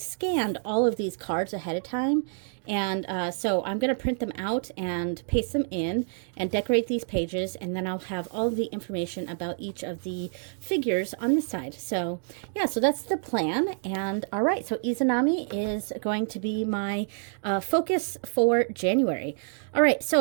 all of these cards ahead of time, and so I'm going to print them out and paste them in and decorate these pages, and then I'll have all of the information about each of the figures on the side. So yeah, so that's the plan. And all right, so Izanami is going to be my focus for January. All right,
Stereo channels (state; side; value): silent; left; 60 dB below the other